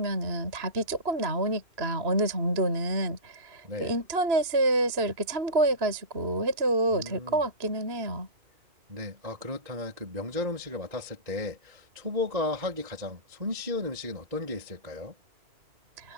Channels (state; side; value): late; left; 2.9 ms